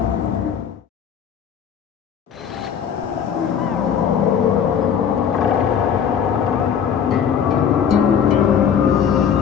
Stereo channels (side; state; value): right; quieter; 8.0 dB